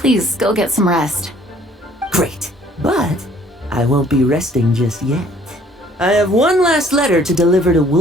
go get some rest. Great, but I won't be resting just yet. I have one last letter to deliver to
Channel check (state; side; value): normal; both; correlation 0.58